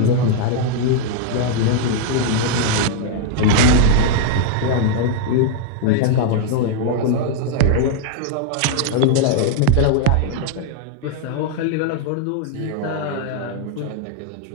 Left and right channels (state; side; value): different; both; correlation 0.00